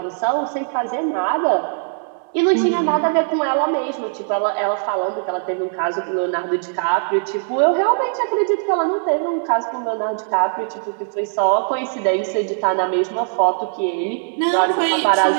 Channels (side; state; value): left; silent; 63 dB below the other